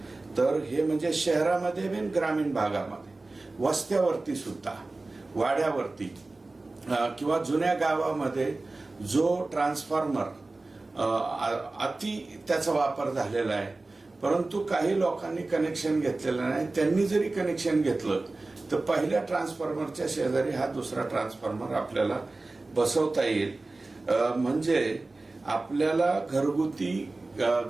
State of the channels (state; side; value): quieter; left; 3.2 dB